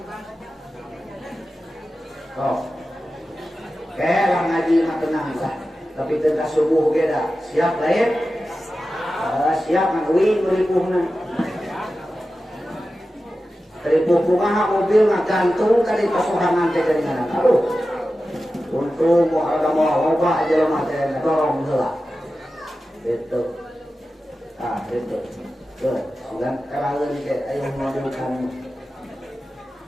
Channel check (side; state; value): both; normal; correlation 0.93